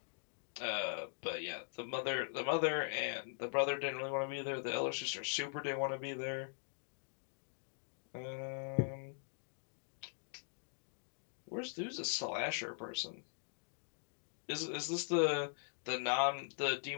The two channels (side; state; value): right; silent; digital silence